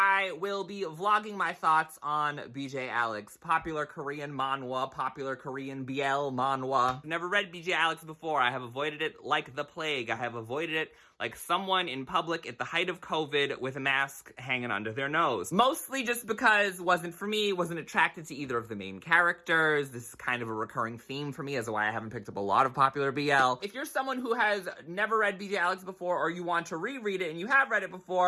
will be vlogging my thoughts on BJ Alex, popular Korean manhwa, popular Korean BL manhwa. I've never read BJ Alex before. I have avoided it like the plague. I have avoided it like someone in public at the height of COVID with a mask hanging under their nose. Mostly just because it wasn't for me, wasn't attracted to either of the main characters. This is kind of a recurring theme for me as to why I haven't picked up a lot of popular BL. If you're someone who has never read BJ Alex before, or you want to reread it and you have read it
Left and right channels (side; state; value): both; identical; correlation 1.00